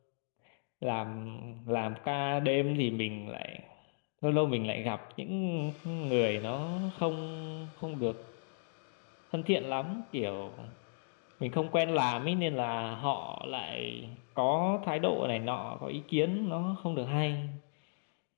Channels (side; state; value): right; silent; digital silence